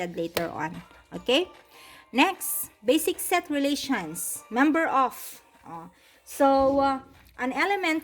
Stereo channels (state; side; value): identical; both; correlation 1.00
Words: later on, okay. Next, basic set relations, member of. An